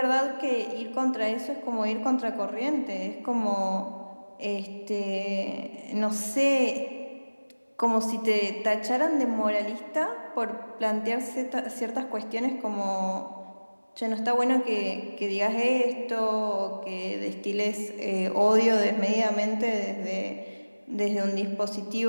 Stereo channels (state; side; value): inverted; both; correlation -1.00